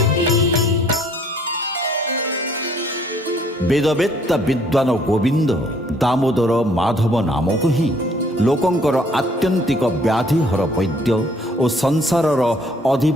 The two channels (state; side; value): normal; both; correlation 0.61